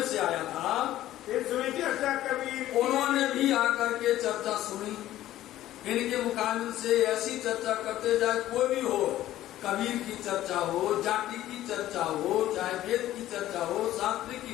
से आया था। फिर सुनी चर्चा कबीर। उन्होंने भी आकर के चर्चा सुनी। इनके मुकाबले से ऐसी चर्चा करते जाए, कोई भी हो, कबीर की चर्चा हो, जाति की चर्चा हो, चाहे वेद की चर्चा हो, शास्त्र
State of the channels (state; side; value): quieter; right; 13.9 dB